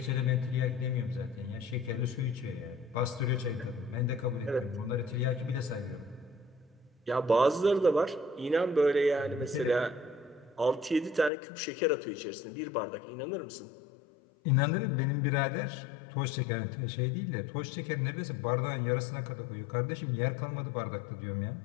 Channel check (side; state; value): right; drops out; at 11.3 s